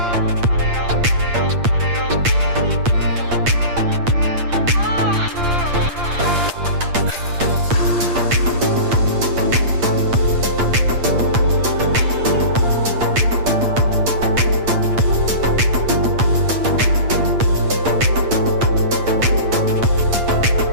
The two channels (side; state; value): left; late; 8.6 ms